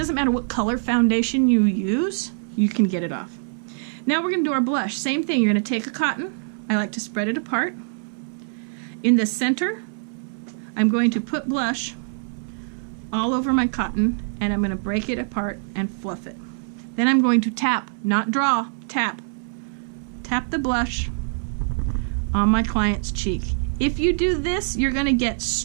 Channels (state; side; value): silent; left; 60 dB below the other